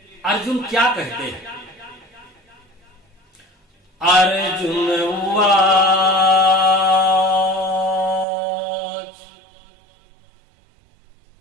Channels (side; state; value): left; drops out; at 8.2 s